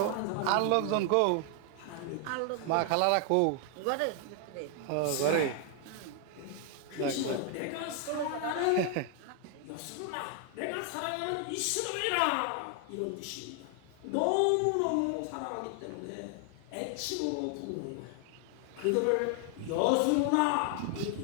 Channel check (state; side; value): different; both; correlation 0.00